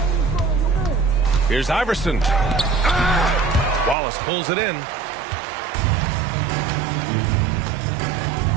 Here's Iverson. Wallace pulls it in.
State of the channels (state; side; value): drops out; left; at 4.0 s